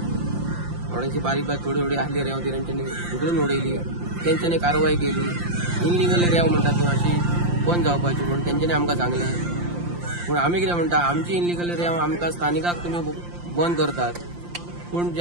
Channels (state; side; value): late; left; 5.7 ms